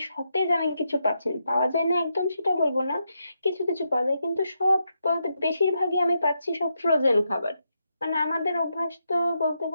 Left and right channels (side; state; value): both; inverted; correlation -0.83